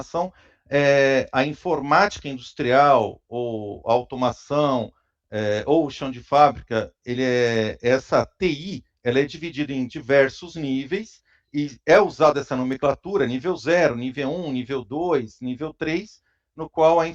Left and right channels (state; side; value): identical; both; correlation 1.00